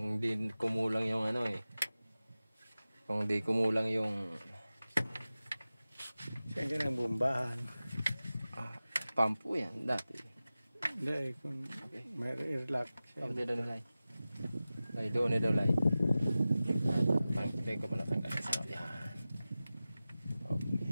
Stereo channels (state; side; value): inverted; both; correlation -0.96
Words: di kumulang yung ano eh. Kung di kumulang yung siyempre ng bombahan. Pampo yan dati. Hindi, kung Okay. may airlock siya. Pag dito na lay. Lay doon daw lay. Pag ko pala tanggal sa yan. Okay.